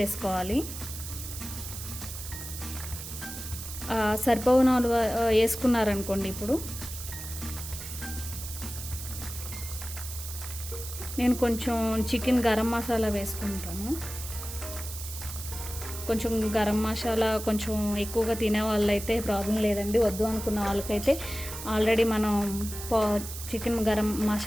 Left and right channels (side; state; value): right; noise; hiss, 9 dB below the sound